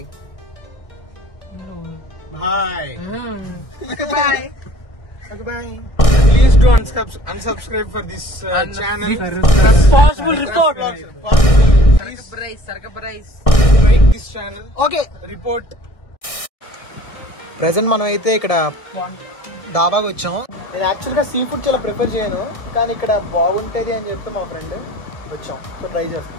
bye bye. Okay, bye. Please do unsubscribe for this channel. Responsible report. Please like this channel. Okay. Report. Present మనం అయితే ఇక్కడ డాబాకి వచ్చాం. నేను యాక్చువల్గా సీ ఫుడ్ చాలా ప్రిఫర్ చేయను, కానీ ఇక్కడ బాగుంటుంది అని చెప్తే మా ఫ్రెండ్ వచ్చాం. సో ట్రై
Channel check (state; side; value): late; right; 1.6 ms